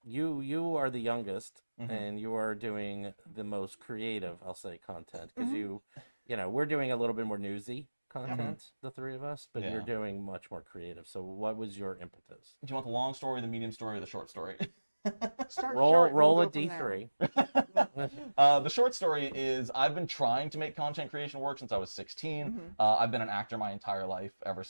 you are the youngest, and you are doing the most creative, I'll say, content because you know, we're doing a little bit more newsy content, the three of us, but you're Yeah. doing much more creative. So what was your impetus? Do you want the long story, the medium story, or the short story? Start Roll short and roll we'll a go from there. D3. The short story is I've been trying to make content creation work since I was 16. I've been an actor my entire life, ever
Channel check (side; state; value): both; inverted; correlation -1.00